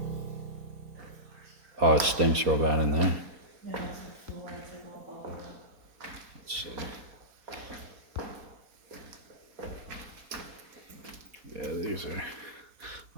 Oh, it stinks real bad in there. Let's see. Yeah, these are.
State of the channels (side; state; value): left; late; 4.2 ms